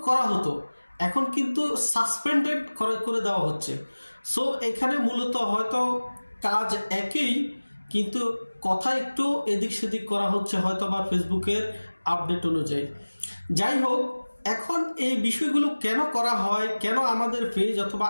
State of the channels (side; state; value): both; inverted; correlation -1.00